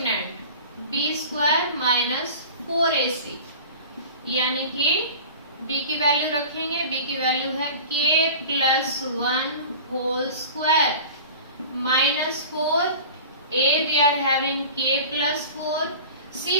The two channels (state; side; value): inverted; both; correlation -0.38